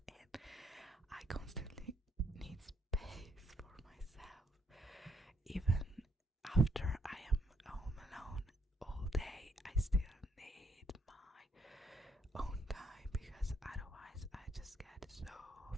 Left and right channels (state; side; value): normal; both; correlation 0.73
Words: and I constantly need space for myself. Even after I am home alone all day, I still need my own time, because otherwise I just get so